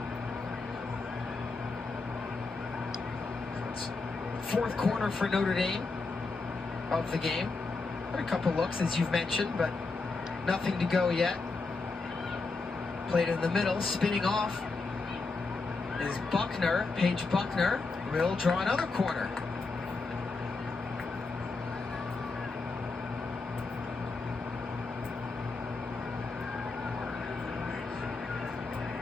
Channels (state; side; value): quieter; right; 3.9 dB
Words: Fourth corner for Notre Dame of the game. Had a couple looks, as you've mentioned, but nothing to go yet. Played in the middle, spinning off is Buckner, Paige Buckner, will draw another corner.